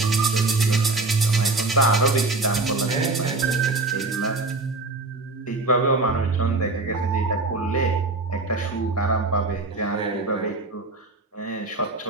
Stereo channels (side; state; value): left; quieter; 3.3 dB